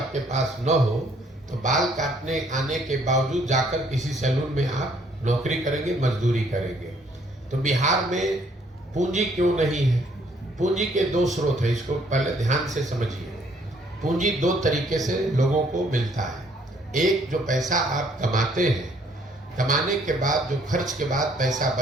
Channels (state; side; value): normal; both; correlation 0.64